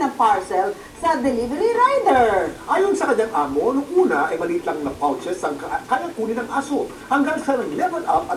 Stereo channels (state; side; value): identical; both; correlation 1.00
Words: ang parcel sa delivery rider? Ayon sa kanyang amo, nung una ay maliit lang na pouches ang kaya kunin ng aso. Hanggang sa nag-level up